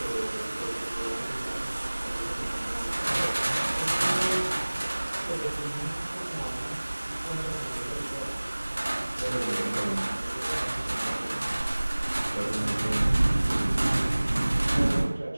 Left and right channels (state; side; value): inverted; both; correlation -1.00